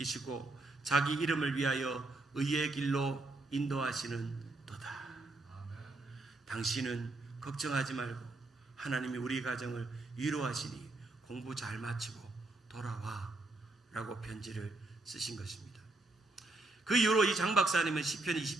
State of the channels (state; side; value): quieter; left; 3.1 dB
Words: 자기 이름을 위하여 의의 길로 인도하시는 도다. 당신은 걱정하지 말고 하나님이 우리 가정을 위로하시니 공부 잘 마치고 돌아와 라고 편지를 쓰신 것입니다. 그 이후로 이 장 박사님은 시편